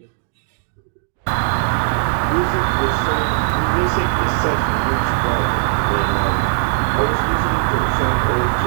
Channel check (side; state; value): left; silent; 60 dB below the other